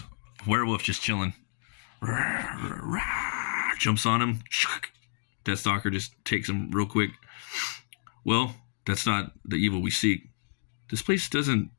werewolf just chilling. Jumps on him. Deathstalker just takes him real quick. Well, that's not the evil we seek. This place doesn't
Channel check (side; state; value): right; silent; digital silence